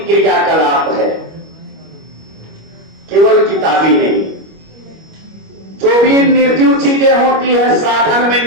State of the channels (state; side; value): late; left; 25 ms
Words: क्रियाकलाप है, केवल किताबी नहीं। जो भी निर्जीव चीजें होती है साधन में